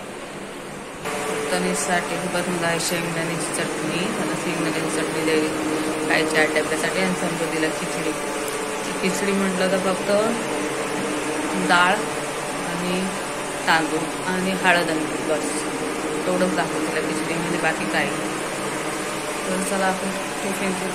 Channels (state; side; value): identical; both; correlation 1.00